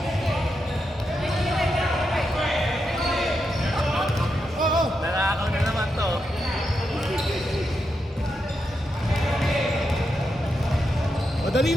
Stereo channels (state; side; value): normal; both; correlation 0.85